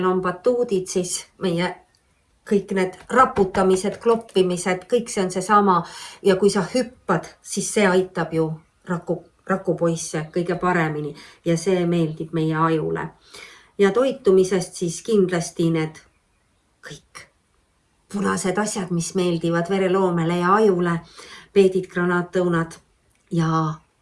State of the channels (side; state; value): both; identical; correlation 1.00